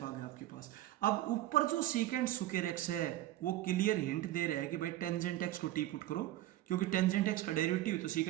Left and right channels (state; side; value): quieter; left; 14.5 dB